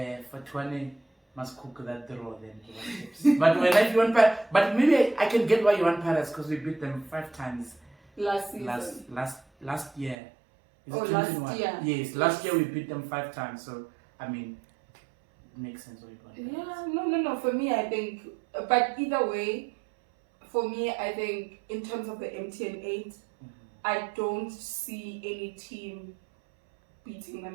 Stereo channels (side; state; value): left; drops out; at 10.2 s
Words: for 20. Must cook that draw then. But when if you want but maybe I can get why you want Pirates because we beat them 5 times last season. Last year. Is it last year? Yes, last year we beat them 5 times. So I mean, it makes sense what you want. Yeah, no. For me, I think, but either way, for me, I think in terms of the MTN8, I don't see any team beating